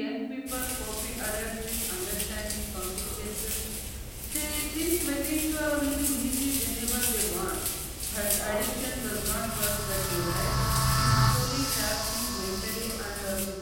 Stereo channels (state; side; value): identical; both; correlation 1.00